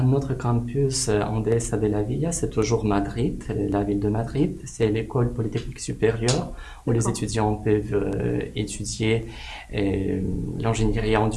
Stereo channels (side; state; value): both; identical; correlation 1.00